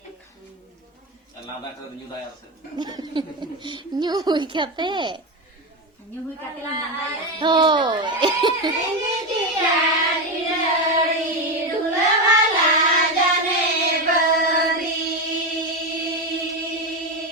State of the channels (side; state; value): both; normal; correlation 0.14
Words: Nyuhi kate. Nyuhui kate landaya. Tuh.